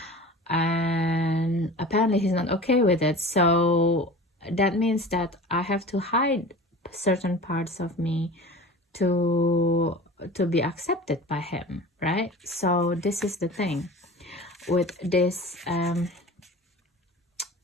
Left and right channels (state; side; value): normal; both; correlation 0.37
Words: and apparently he's not okay with it. So that means that I have to hide certain parts of me to be accepted by him, right? So this is the thing with this